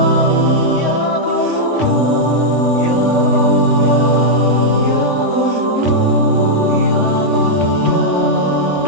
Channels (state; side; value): late; right; 3.5 ms